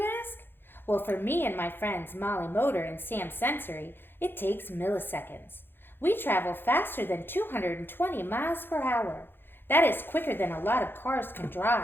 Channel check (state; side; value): late; right; 0.10 ms